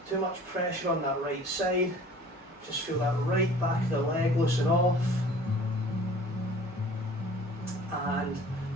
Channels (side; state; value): both; normal; correlation 0.48